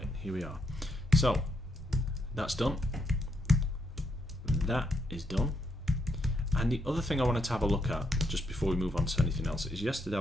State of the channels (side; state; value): both; normal; correlation 0.78